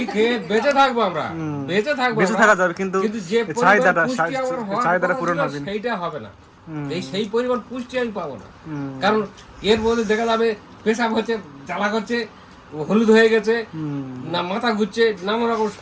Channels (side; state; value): both; identical; correlation 1.00